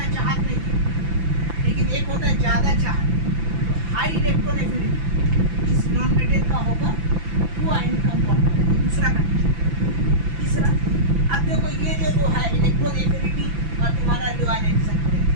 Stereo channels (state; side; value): late; left; 5.9 ms